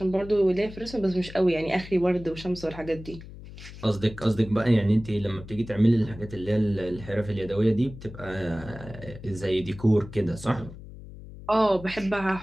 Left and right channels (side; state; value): left; noise; hum, 15 dB below the sound